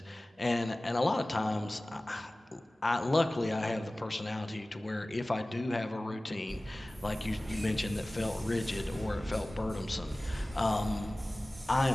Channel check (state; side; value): normal; both; correlation 0.98